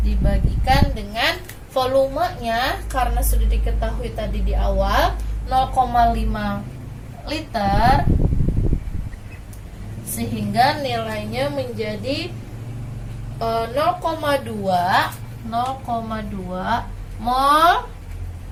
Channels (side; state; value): both; identical; correlation 1.00